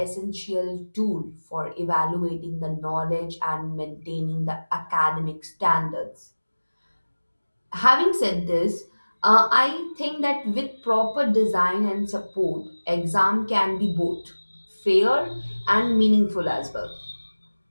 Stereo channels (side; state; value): both; inverted; correlation -1.00